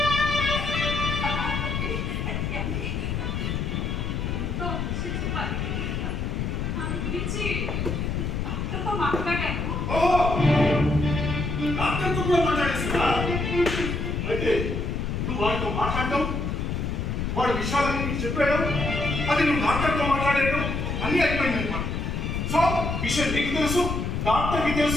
డాక్టర్తో కూడా మాట్లాడేసిందా? అయితే నువ్వు వాడితో మాట్లాడటం, వాడి విషయాలన్నీ నీకు చెప్పాడు, అది నువ్వు డాక్టర్తో మాట్లాడేయడం అన్నీ అయిపోయింది అనమాట. సో విషయం నీకు తెలుసు, డాక్టర్కి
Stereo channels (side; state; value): left; noise; rumble, 1 dB below the sound